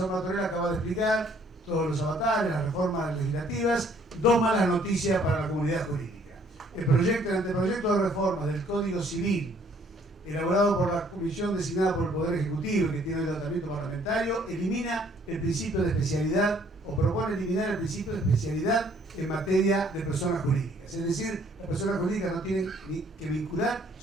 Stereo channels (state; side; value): normal; both; correlation 0.62